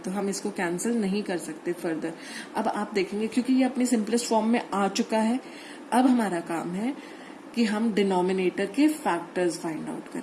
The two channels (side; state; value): both; identical; correlation 1.00